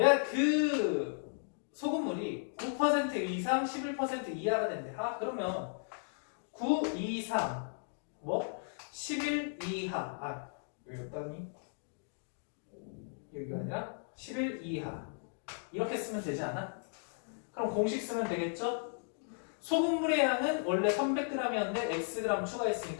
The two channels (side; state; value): right; silent; digital silence